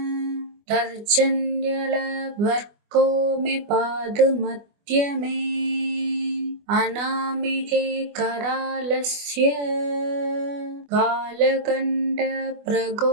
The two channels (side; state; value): left; late; 24 ms